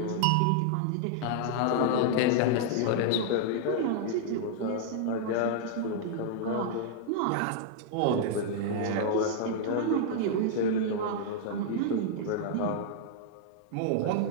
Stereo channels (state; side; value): different; both; correlation -0.01